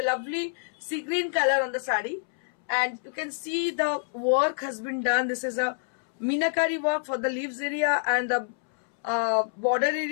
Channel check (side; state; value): right; silent; 60 dB below the other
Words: a lovely sea green color on the sari, and you can see the work has been done. This is a meenakari work for the leaves area, and the border